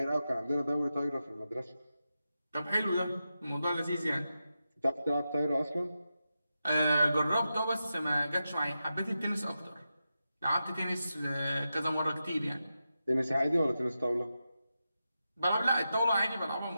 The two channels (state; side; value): inverted; both; correlation -0.90